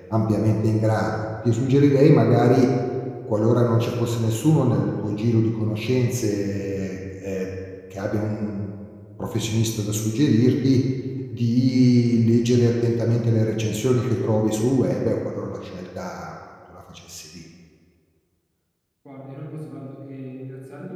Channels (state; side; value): identical; both; correlation 1.00